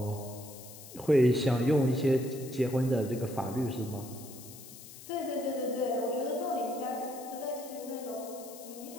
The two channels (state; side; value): noise; left; hiss, 16 dB below the sound